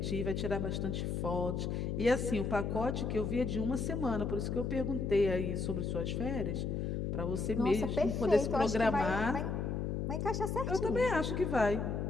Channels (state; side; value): noise; left; hum, 1 dB below the sound